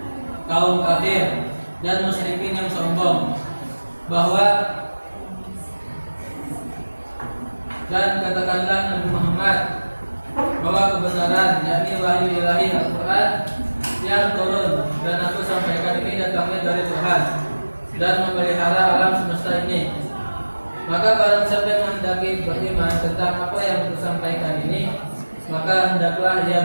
kaum kafir dan musyrikin yang sombong, bahwa dan katakanlah Nabi Muhammad bahwa kebenaran, yakni wahyu ilahi Al-Quran yang turun dan aku sampaikan ini datangnya dari Tuhan dan memelihara alam semesta ini. Maka barang siapa yang menghendaki beriman tentang apa yang aku sampaikan ini, maka hendaklah ia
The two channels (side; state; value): both; inverted; correlation -1.00